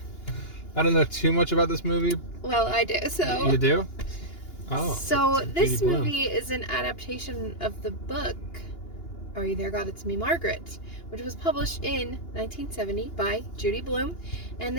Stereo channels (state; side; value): late; right; 2.9 ms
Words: I don't know too much about this movie. Well, I do, so... You do? Oh. So, this Judy Blume. movie is an adaptation of the book, Are You There, God? It's Me, Margaret, which was published in 1970 by Judy Blume. And